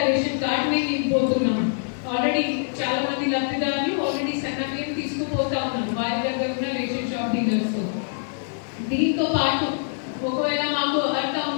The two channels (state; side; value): silent; right; digital silence